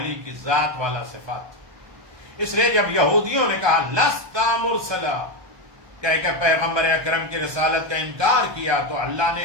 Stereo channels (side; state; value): left; late; 1.2 ms